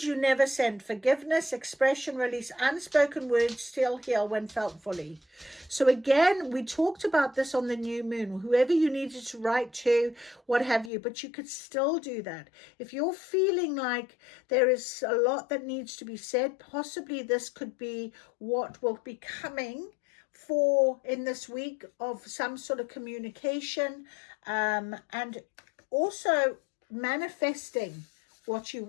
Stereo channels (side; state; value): right; drops out; at 10.9 s